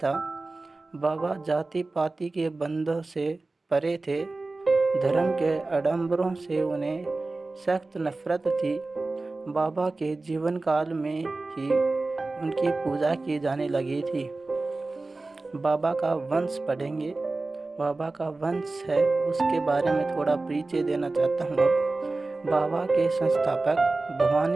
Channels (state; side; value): quieter; left; 3.3 dB